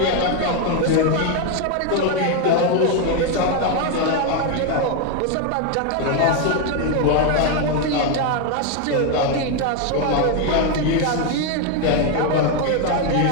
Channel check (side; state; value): both; different; correlation 0.01